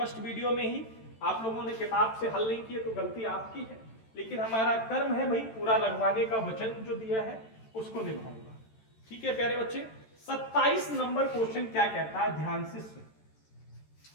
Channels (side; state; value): right; late; 13 ms